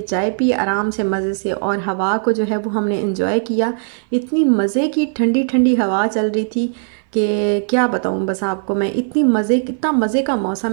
चाय पी आराम से मज़े से और हवा को जो है वो हमने एंजॉय किया। इतनी मज़े की ठंडी ठंडी हवा चल रही थी कि क्या बताऊँ बस आपको मैं। इतना मज़े का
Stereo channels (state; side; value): silent; left; 60 dB below the other